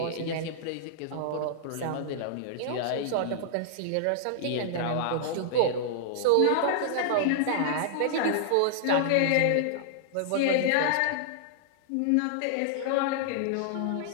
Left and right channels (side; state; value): both; different; correlation -0.01